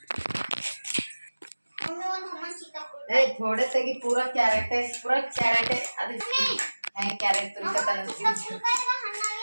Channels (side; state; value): both; inverted; correlation -1.00